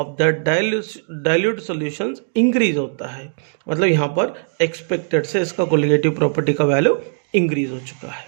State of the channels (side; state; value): left; silent; digital silence